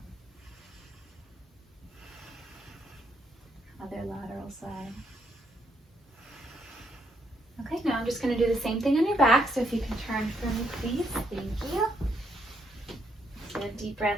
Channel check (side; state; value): both; normal; correlation 0.75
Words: Other lateral side. Okay, now just going to do the same thing on your back. So if you can turn for me, please. Thank you. Get a deep